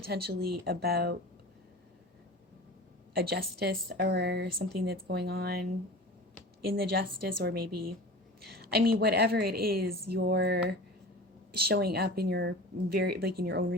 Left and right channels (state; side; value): normal; both; correlation 0.35